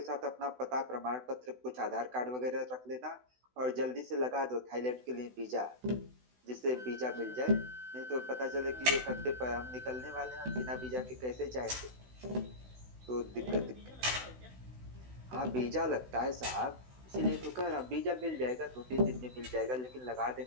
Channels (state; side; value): late; left; 16 ms